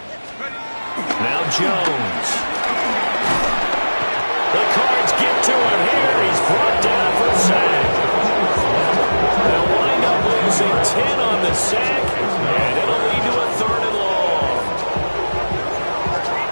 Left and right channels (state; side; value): inverted; both; correlation -1.00